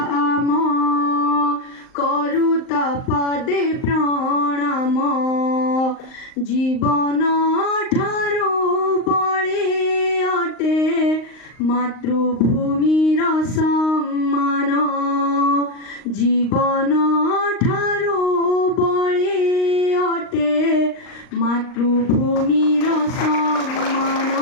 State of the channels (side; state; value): right; late; 38 ms